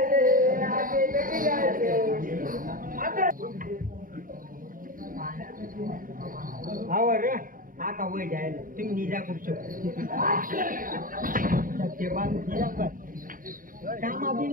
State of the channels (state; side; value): late; left; 0.40 ms